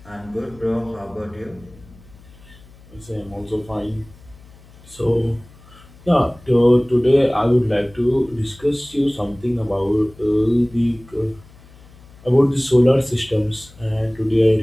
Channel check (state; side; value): noise; left; hum, 24 dB below the sound